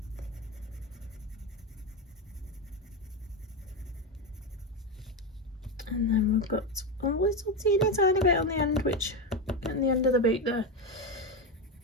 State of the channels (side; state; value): both; normal; correlation 0.13